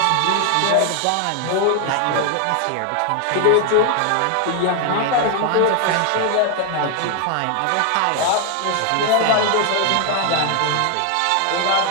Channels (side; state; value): both; different; correlation 0.00